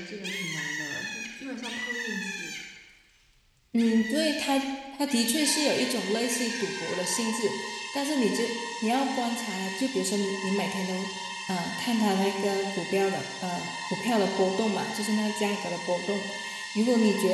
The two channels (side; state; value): both; identical; correlation 1.00